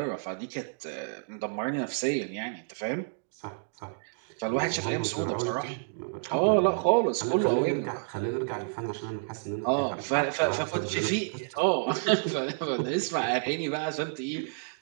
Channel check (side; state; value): left; silent; digital silence